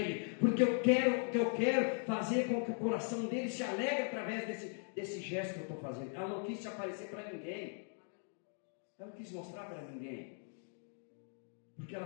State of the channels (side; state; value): right; silent; 52 dB below the other